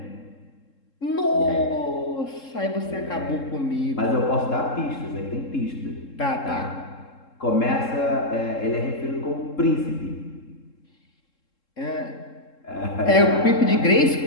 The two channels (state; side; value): late; right; 3.7 ms